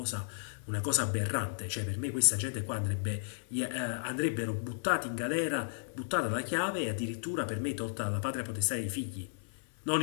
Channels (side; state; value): right; silent; 55 dB below the other